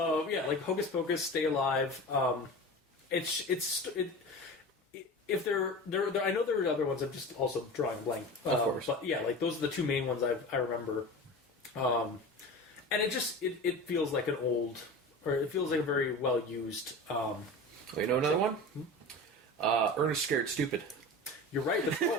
Yeah, like Hocus Pocus, Stay Alive. If there, I know there are other ones. I'm just also drawing a blank. Of course, but yeah, like those are the two main ones I remember. And it feels like an old, or it feels like a very well used. You know another one? Ernest Scared Stupid. You're right. The troll.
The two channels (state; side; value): normal; both; correlation 0.32